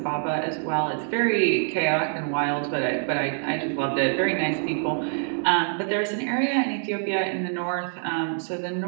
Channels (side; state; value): left; silent; 58 dB below the other